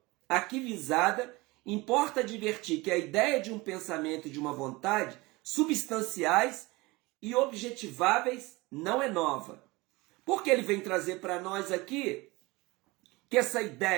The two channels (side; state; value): left; quieter; 22.8 dB